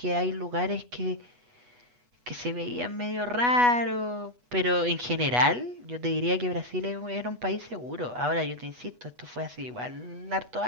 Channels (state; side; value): late; left; 8.2 ms